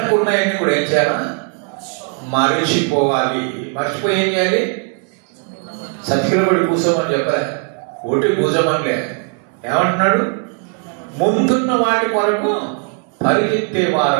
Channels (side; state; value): left; quieter; 38.0 dB